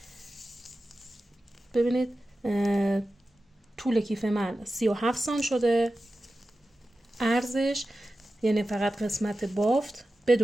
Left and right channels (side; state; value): both; normal; correlation 0.94